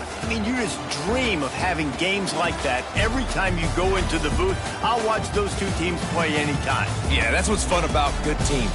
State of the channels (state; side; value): identical; both; correlation 1.00